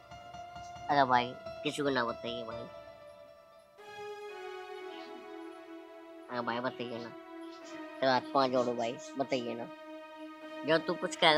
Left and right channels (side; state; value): both; identical; correlation 1.00